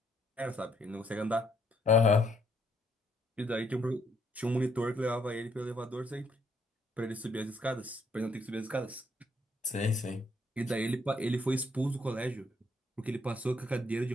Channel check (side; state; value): both; normal; correlation 0.70